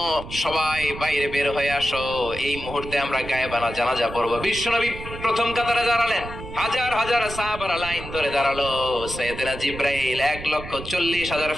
সবাই বাইরে বের হয়ে আসো, এই মুহূর্তে আমরা গায়েবানা জানাজা পড়বো। বিশ্বনবী প্রথম কাতারে দাঁড়ালেন, হাজার হাজার সাহাবারা লাইন ধরে দাঁড়ালো। সাইয়েদনা জিব্রাইল 1,40,000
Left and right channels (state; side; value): noise; right; rumble, 11 dB below the sound